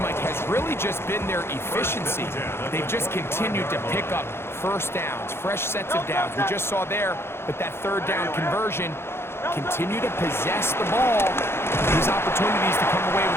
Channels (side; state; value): right; late; 0.12 ms